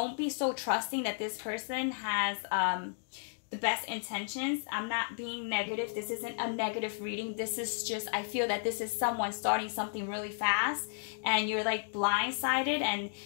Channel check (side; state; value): right; silent; digital silence